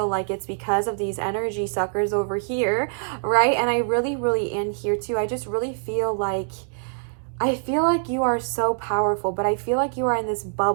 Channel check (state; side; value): silent; left; digital silence